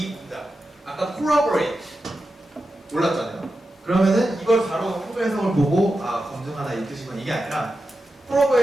문장 아까 corroborate 몰랐잖아요. 그러면은 이걸 바로 한글 해석을 보고 검증하다 이 뜻이구나 이게 아니라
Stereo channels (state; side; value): normal; both; correlation 0.90